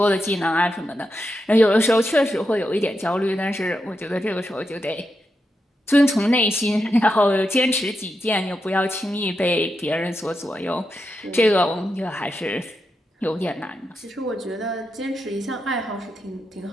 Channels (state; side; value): normal; both; correlation 0.86